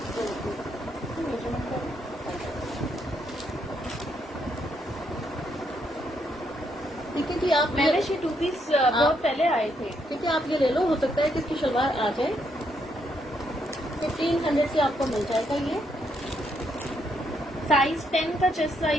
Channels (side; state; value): both; normal; correlation 0.76